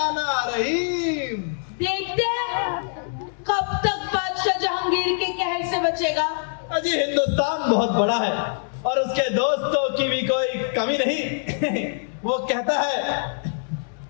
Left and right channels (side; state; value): right; silent; digital silence